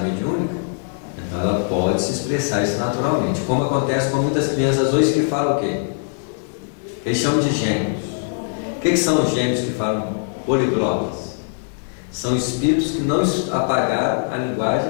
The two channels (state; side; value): silent; right; digital silence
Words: mediúnica, então ela pode se expressar isso naturalmente. Como acontece com muitas crianças hoje que falam o quê? Eles chamam de gênios. O que são os gênios que falam poliglotas? São espíritos que não apagaram a